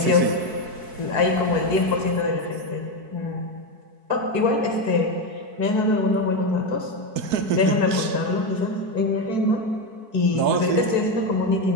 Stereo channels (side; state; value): left; late; 4.6 ms